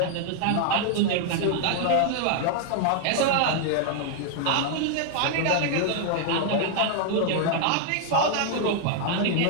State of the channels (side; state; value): both; different; correlation 0.00